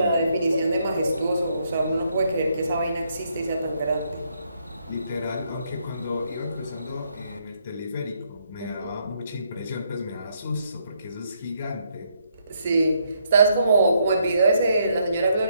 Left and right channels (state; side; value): inverted; both; correlation -0.74